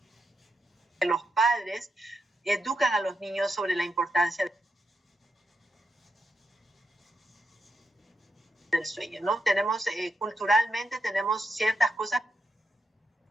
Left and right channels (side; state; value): both; normal; correlation 0.84